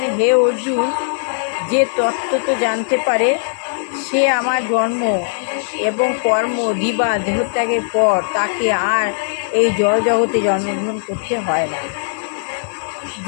হে অর্জুন, যে তত্ত্ব তো জানতে পারে সে আমার জন্ম এবং কর্ম দিবা দেহত্যাগের পর তাকে আর এই জড়জগতে জন্মগ্রহণ করতে হয় না।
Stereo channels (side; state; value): right; silent; digital silence